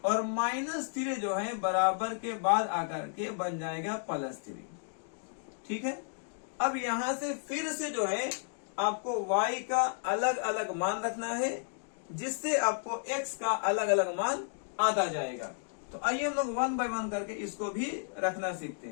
और -3 जो है बराबर के बाद आकर के बन जाएगा +3। ठीक है, अब यहां से फिर से जो है आपको y का अलग अलग मान रखना है, जिससे आपको x का अलग अलग मान आता जाएगा। तो आइए हम लोग 1 बाय 1 करके इसको भी रखना सीखते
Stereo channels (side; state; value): right; silent; digital silence